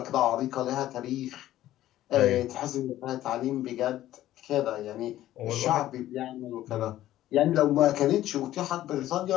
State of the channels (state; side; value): quieter; right; 13.8 dB